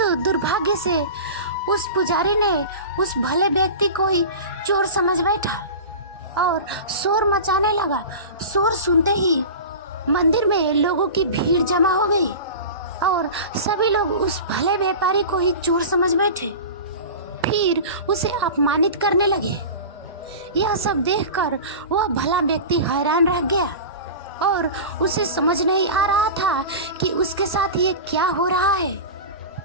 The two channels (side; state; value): both; inverted; correlation -0.31